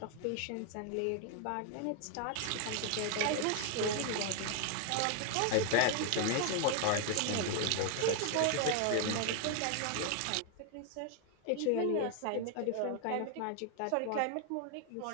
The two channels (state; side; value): different; both; correlation 0.00